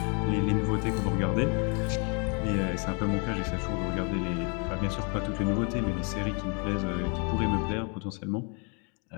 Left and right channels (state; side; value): quieter; right; 35.5 dB